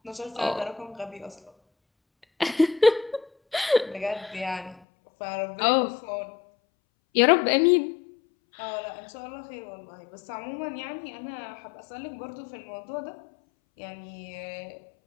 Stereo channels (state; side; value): drops out; right; at 4.8 s